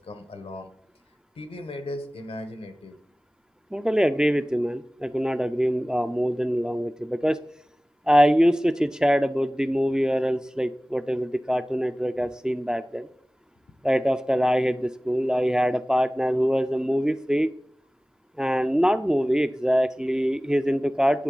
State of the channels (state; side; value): normal; both; correlation 0.98